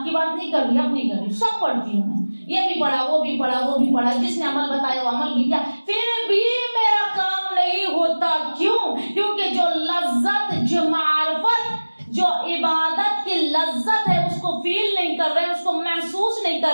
बात नहीं कर रही, अपनी कर रही, सब पढ़ती हूँ मैं। ये भी पढ़ा, वो भी पढ़ा, वो भी पढ़ा, जिसने अमल बताया वो अमल भी किया, फिर भी मेरा काम नहीं होता। क्यों? क्योंकि जो लज्जत, जो मार्फत, जो इबादत की लज्जत है उसको फील नहीं कर रहे, उसको महसूस नहीं कर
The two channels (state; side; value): inverted; both; correlation -1.00